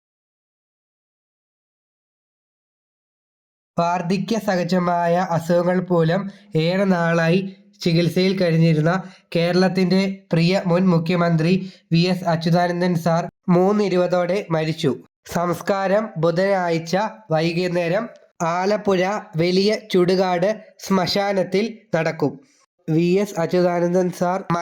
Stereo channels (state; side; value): identical; both; correlation 1.00